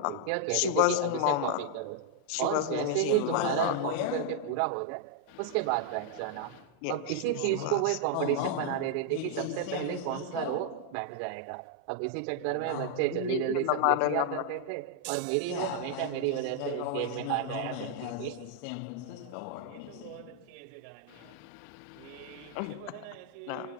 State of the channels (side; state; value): both; different; correlation 0.00